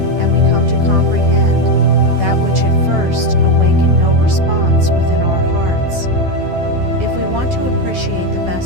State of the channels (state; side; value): late; left; 12 ms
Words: and we come to comprehend that which at first awakened no response within our hearts. If we want to appreciate the